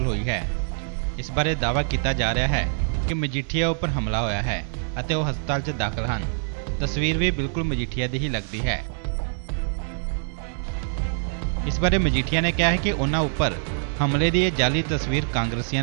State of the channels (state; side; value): silent; left; digital silence